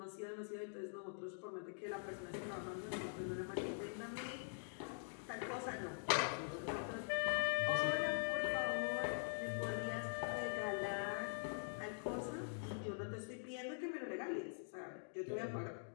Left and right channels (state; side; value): silent; right; digital silence